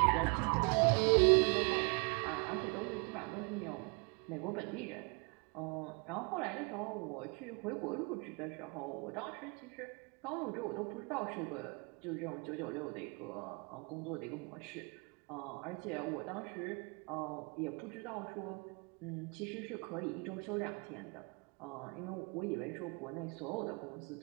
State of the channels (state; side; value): quieter; left; 32.8 dB